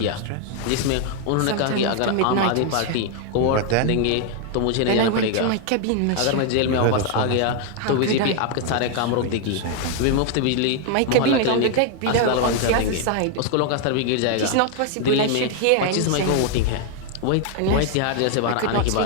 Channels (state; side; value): different; both; correlation 0.00